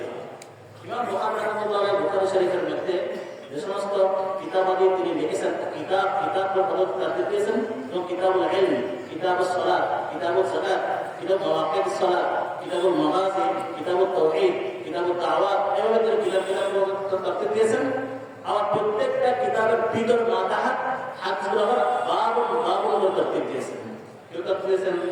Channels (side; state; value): both; identical; correlation 1.00